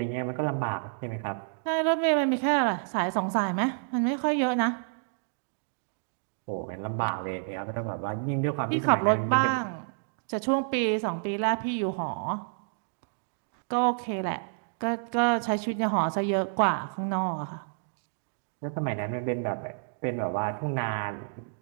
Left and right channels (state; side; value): silent; left; digital silence